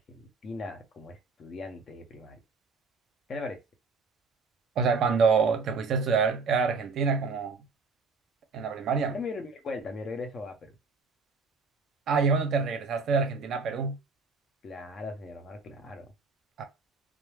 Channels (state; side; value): quieter; left; 4.4 dB